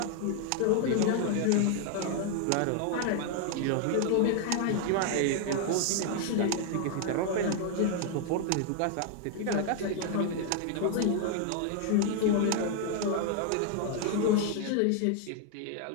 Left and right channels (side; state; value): both; different; correlation 0.00